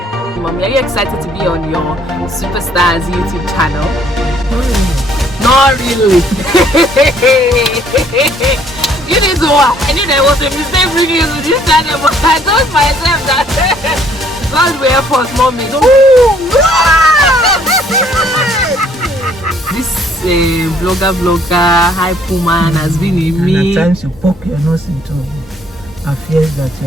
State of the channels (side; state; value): both; normal; correlation 0.63